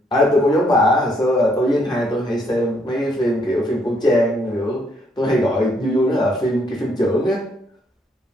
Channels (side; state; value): both; normal; correlation 0.70